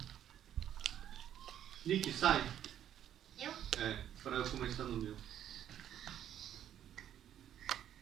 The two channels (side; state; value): left; quieter; 10.6 dB